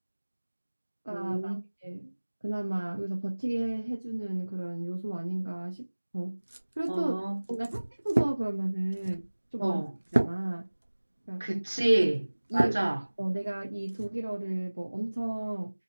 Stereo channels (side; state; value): both; inverted; correlation -1.00